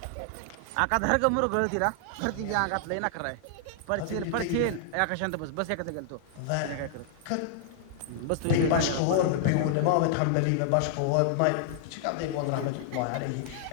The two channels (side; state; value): both; different; correlation -0.01